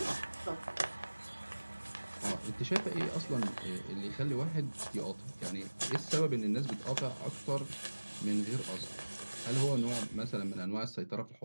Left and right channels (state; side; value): inverted; both; correlation -1.00